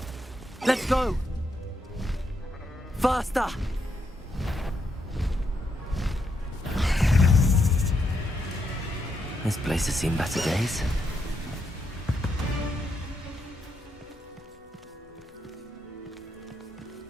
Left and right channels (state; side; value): normal; both; correlation 0.80